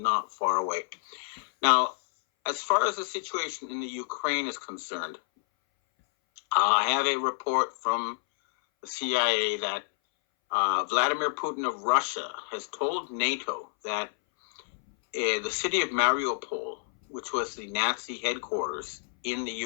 far away. Now, as far as the situation in the Ukraine is concerned, I have a report from the CIA that Vladimir Putin of Russia has told NATO that the city of Mariupol, which was the Nazi headquarters in the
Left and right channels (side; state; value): right; silent; 59 dB below the other